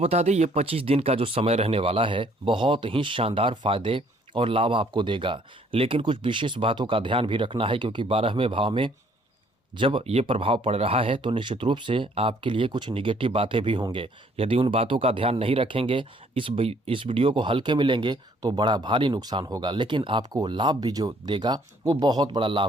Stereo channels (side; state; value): both; normal; correlation 0.62